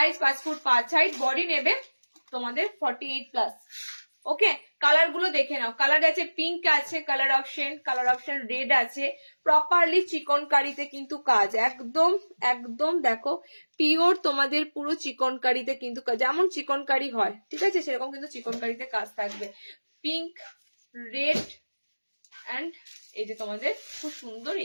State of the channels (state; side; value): inverted; both; correlation -1.00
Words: 5 ফুট 5 হাইট, বডি নেবে তোমাদের 48 প্লাস। ওকে কালার গুলো দেখে নাও, কালার আছে পিঙ্ক আছে কালার অপশন রেড আছে, প্রপারলি চিকন কারিতে কিন্তু কাজ, একদম একদম দেখো পিওর তোমাদের পুরো চিকন কারিতে কিন্তু যেমন চিকন কারি হয়, ঠিক আছে, সেরকম কিন্তু চিকন কারিতে কাজ থাকবে। পিঙ্ক রেড অ্যান্ড এই যে তোমাদের খুব সুন্দর